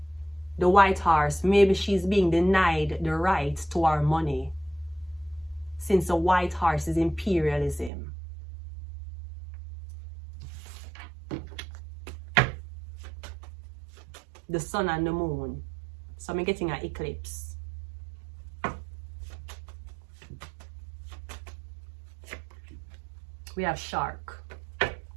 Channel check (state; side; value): drops out; left; at 7.9 s